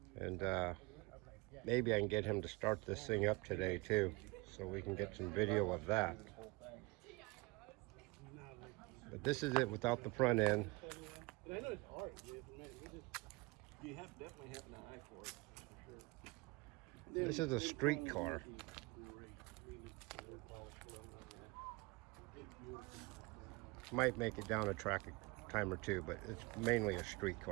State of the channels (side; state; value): left; quieter; 24.5 dB